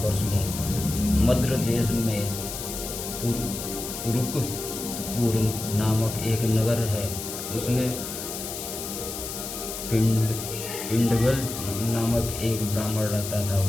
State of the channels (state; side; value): noise; left; hiss, 7 dB below the sound